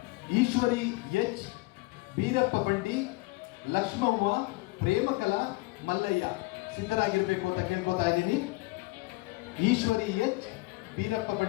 ಈಶ್ವರಿ ಎಚ್, ಬೀರಪ್ಪ ಬಂಡಿ, ಲಕ್ಷ್ಮವ್ವ, ಪ್ರೇಮಕಲಾ, ಮಲ್ಲಯ್ಯ. ಸಿದ್ಧರಾಗಿರ್ಬೇಕು ಅಂತ ಕೇಳ್ಕೊತಾ ಇದ್ದೀನಿ. ಈಶ್ವರಿ ಎಚ್, ಬೀರಪ್ಪ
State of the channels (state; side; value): quieter; right; 23.4 dB